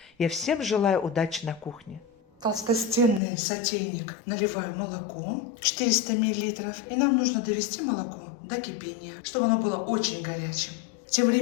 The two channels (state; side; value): drops out; right; at 3.2 s